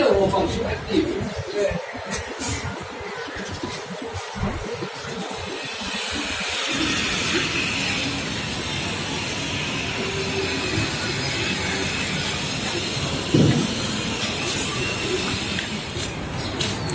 phòng số mấy tiền?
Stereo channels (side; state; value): both; identical; correlation 1.00